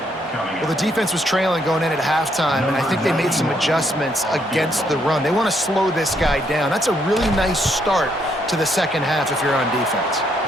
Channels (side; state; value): both; normal; correlation 0.73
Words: Well, the defense was trailing going in at halftime, and I think they made some adjustments against the run. They want to slow this guy down. That's a really nice start to the second half if you're on defense.